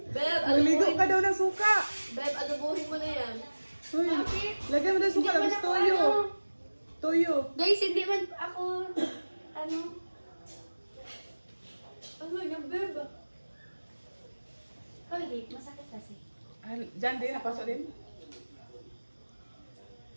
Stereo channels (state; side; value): inverted; both; correlation -1.00